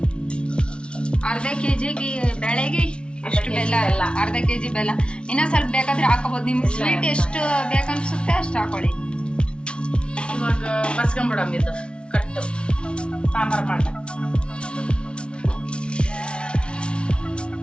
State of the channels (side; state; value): right; late; 0.057 ms